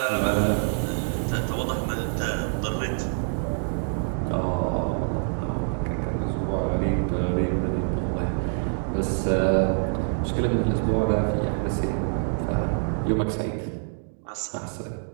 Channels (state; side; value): silent; left; 61 dB below the other